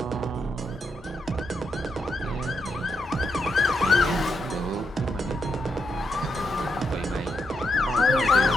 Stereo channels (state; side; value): normal; both; correlation 0.82